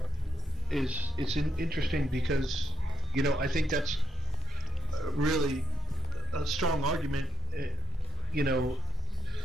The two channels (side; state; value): both; normal; correlation 0.68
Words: it's interesting because, you know, I think that's really a strong argument, you know,